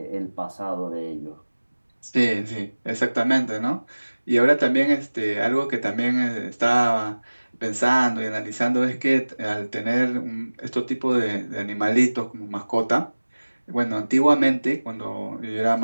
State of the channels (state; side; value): inverted; both; correlation -1.00